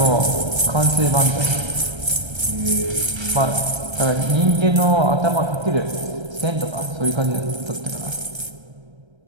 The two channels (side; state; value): left; late; 1.3 ms